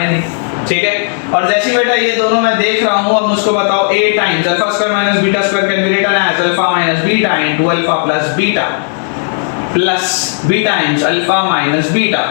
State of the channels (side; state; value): right; silent; 63 dB below the other